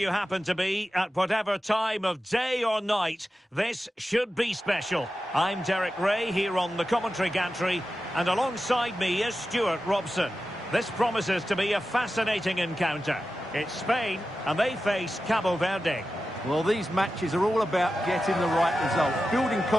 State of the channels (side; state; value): both; normal; correlation 0.92